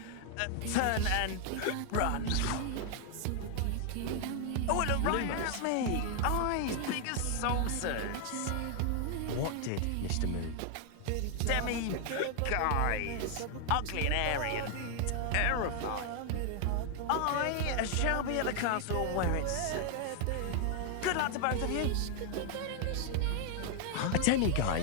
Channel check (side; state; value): both; different; correlation 0.00